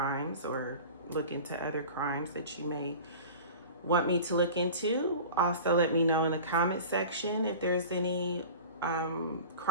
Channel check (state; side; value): inverted; both; correlation -0.38